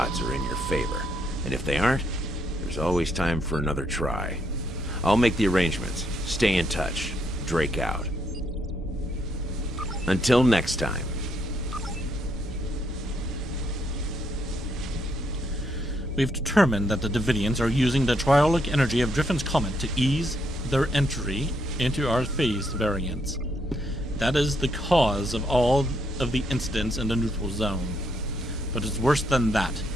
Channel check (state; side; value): normal; both; correlation 0.75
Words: are in your favor. And if they aren't, there's always time for another try. I'll make the arrangements. Stay in touch. Drake out. Until next time. We've determined that the Davidians are using the triolic energy of Driffin's comet to ease their entry into our phased variants. That is the cause of all of the incidents in the neutral zone. But it's worse than that.